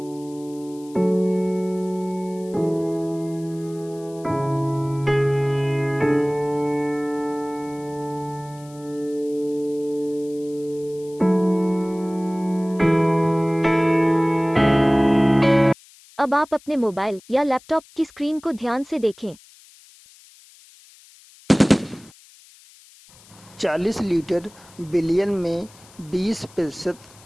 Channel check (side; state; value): left; noise; hiss, 25 dB below the sound